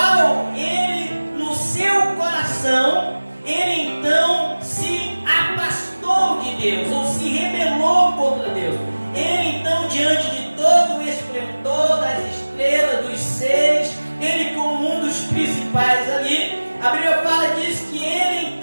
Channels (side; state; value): both; inverted; correlation -1.00